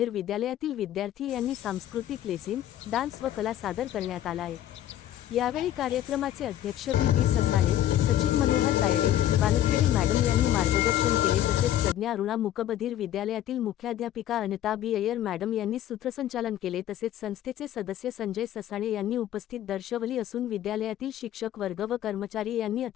विद्यालयातील विद्यार्थी यांनी सांस्कृतिक लेझिम, डान्स व कला सादर करण्यात आला आहे. यावेळी कार्यक्रमाचे अध्यक्ष बी ससाणे, सचिव मनोहर तायडे, वानखेडे मॅडम यांनी मार्गदर्शन केले. तसेच प्रज्ञा अरुणा मूकबधिर विद्यालयातील मुख्याध्यापिका अनिता बी अय्यर मॅडम यांनी सूत्रसंचालन केले. तसेच संस्थेचे सदस्य संजय ससाणे यांनी उपस्थित दर्शवली असून विद्यालयातील शिक्षक वर्ग व कर्मचारी यांनी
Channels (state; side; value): quieter; right; 12.2 dB